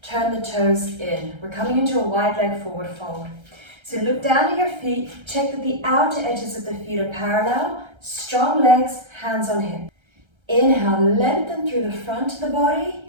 turn the toes in. We're coming into a wide leg forward fold. So look down at your feet, check that the outer edges of the feet are parallel, strong legs, hands on hip. Inhale, lengthen through the front of the body.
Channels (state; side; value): late; left; 1.3 ms